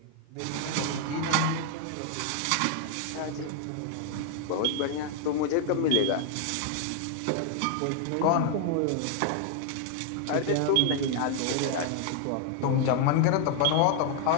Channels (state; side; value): different; both; correlation 0.00